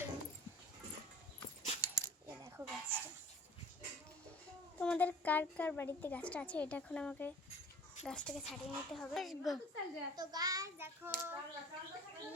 দেখো গাছটা তোমাদের কার কার বাড়িতে গাছটা আছে এটা এখন আমাকে গাছটাকে ছাড়িয়ে নিতে হবে। তো গাছ দেখো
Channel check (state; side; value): normal; both; correlation 0.45